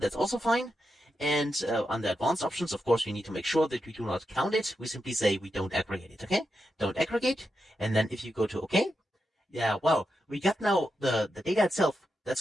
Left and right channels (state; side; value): normal; both; correlation 0.87